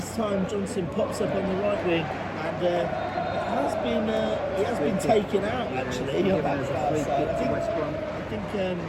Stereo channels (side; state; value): both; identical; correlation 1.00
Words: time Johnson pops up on the right wing, and it has been taken out actually on that far side. I think